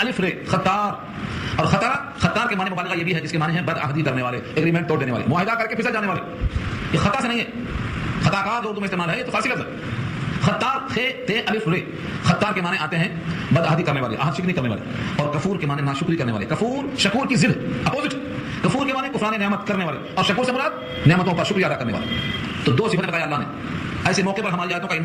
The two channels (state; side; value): identical; both; correlation 1.00